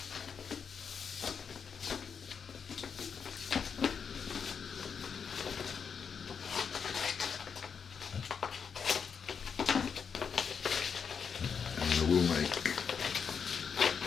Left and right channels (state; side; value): quieter; right; 6.5 dB